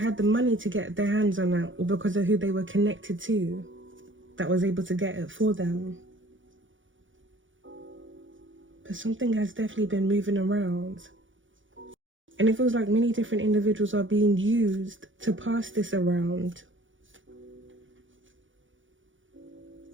the money to get their hands on it, or because of who they were connected to that was able to get it for them. But something has definitely been moving around. And it feels like many different individuals are being used to pass this around.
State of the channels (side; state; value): left; late; 0.56 ms